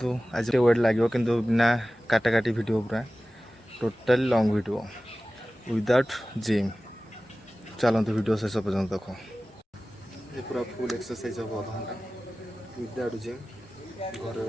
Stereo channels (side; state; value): both; normal; correlation 0.96